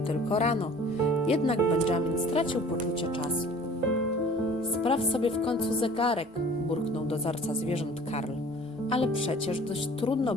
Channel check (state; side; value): normal; both; correlation 0.48